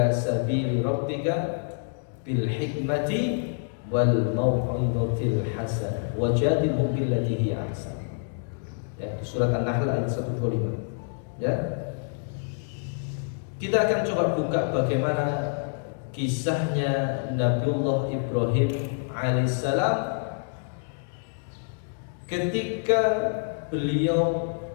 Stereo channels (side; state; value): right; silent; digital silence